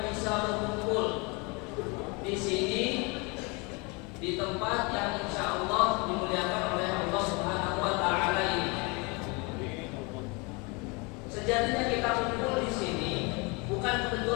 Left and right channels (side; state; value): right; quieter; 29.2 dB